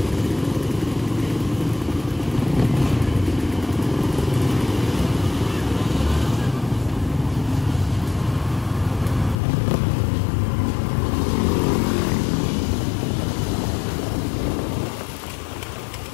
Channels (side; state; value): right; drops out; at 9.3 s